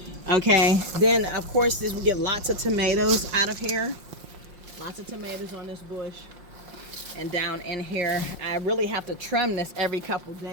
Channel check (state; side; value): late; left; 5.6 ms